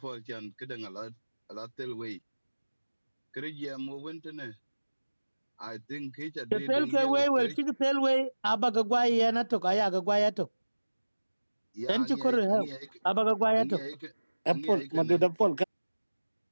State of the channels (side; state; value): both; inverted; correlation -1.00